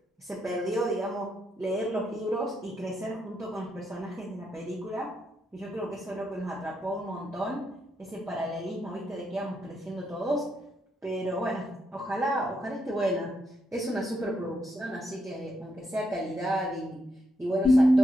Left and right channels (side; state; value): both; normal; correlation 0.80